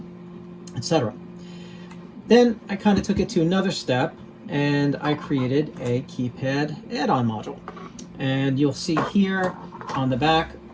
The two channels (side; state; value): both; identical; correlation 1.00